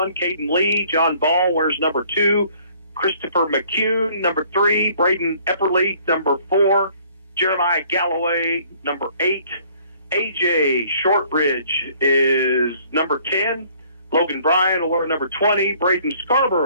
Caden Lee. John Ball wears number 2. Christopher McCune, number 3. Braden Epperly, number 4. Jeremiah Galloway, number 8. AJ Shortridge is number 10. Logan Bryan will wear number 20. Braden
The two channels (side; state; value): both; inverted; correlation -0.59